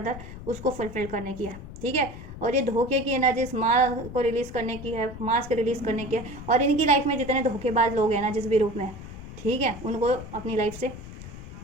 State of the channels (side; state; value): left; noise; rumble, 12 dB below the sound